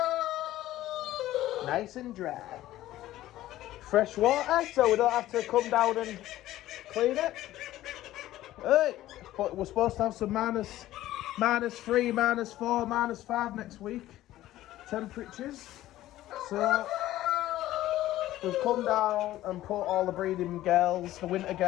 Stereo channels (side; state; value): right; quieter; 14.8 dB